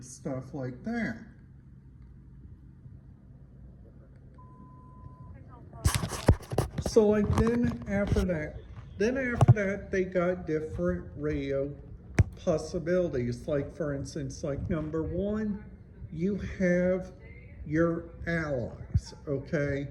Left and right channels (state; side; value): identical; both; correlation 1.00